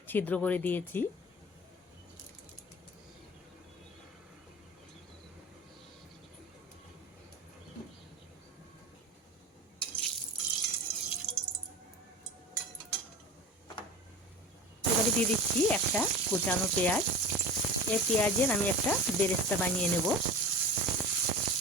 ছিদ্র করে দিয়েছি। এবারে দিয়ে দিচ্ছি একটা কুচানো পেঁয়াজ। এই পেঁয়াজের আমি একটা বেরেস্তা বানিয়ে নেব।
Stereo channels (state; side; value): normal; both; correlation 0.33